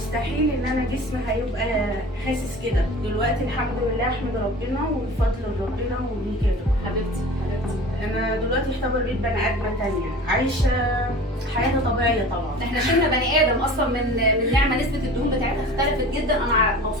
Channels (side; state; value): both; normal; correlation 0.40